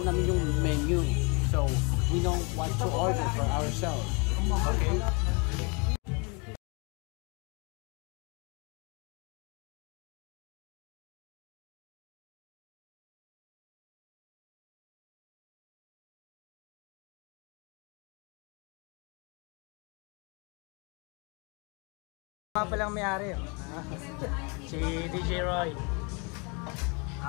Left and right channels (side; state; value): right; quieter; 31.8 dB